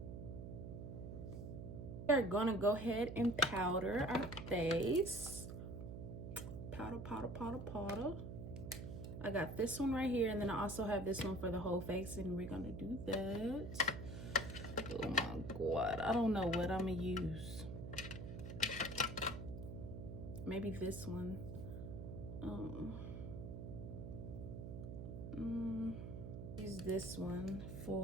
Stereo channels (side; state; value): right; noise; hum, 7 dB below the sound